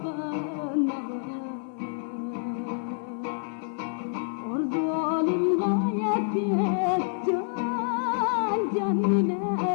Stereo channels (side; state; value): right; silent; digital silence